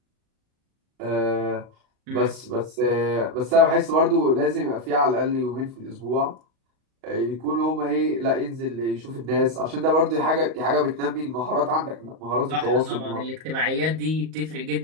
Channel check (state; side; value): late; left; 38 ms